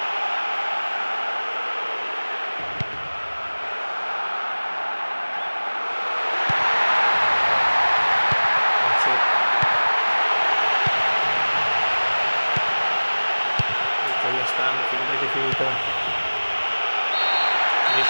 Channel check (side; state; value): both; inverted; correlation -1.00